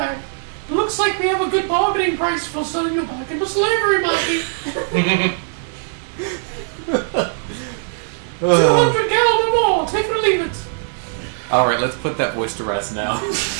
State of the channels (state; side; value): silent; left; digital silence